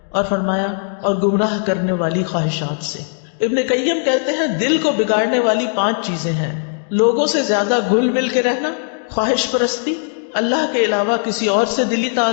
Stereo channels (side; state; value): right; silent; 63 dB below the other